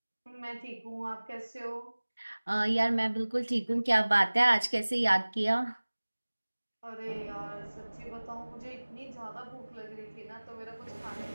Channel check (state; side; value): inverted; both; correlation -1.00